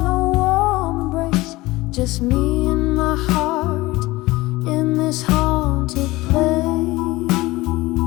warm embrace, just me and my heart in this haunted place.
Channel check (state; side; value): quieter; right; 19.7 dB